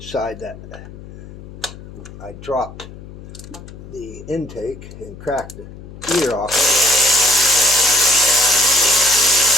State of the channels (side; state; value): left; noise; hum, 15 dB below the sound